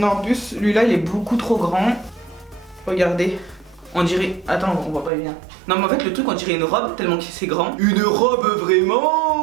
en plus lui là il est beaucoup trop grand. Regardez. On dirait... Attends, on voit pas bien. Non mais en fait le truc on dirait une robe tellement que c'est grand. Une robe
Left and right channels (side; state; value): left; drops out; at 5.1 s